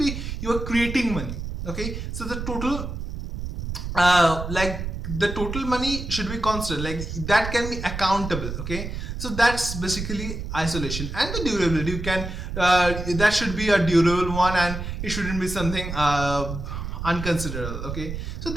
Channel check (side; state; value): right; noise; rumble, 6 dB below the sound